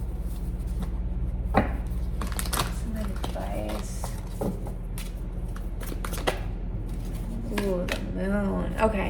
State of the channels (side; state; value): both; identical; correlation 1.00